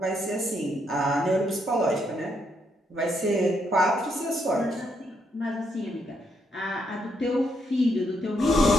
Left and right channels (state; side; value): normal; both; correlation 0.76